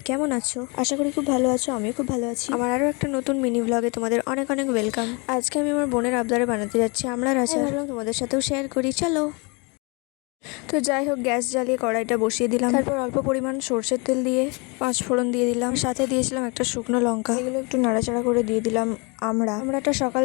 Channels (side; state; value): right; quieter; 30.4 dB